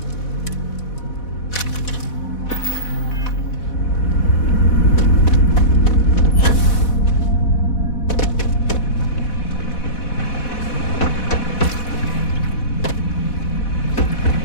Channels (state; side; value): late; right; 4.1 ms